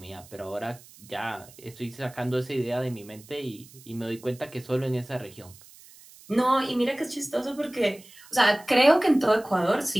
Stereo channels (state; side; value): noise; right; hiss, 22 dB below the sound